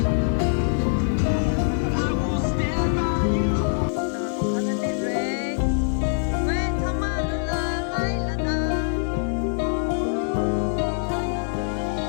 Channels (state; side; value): silent; right; 61 dB below the other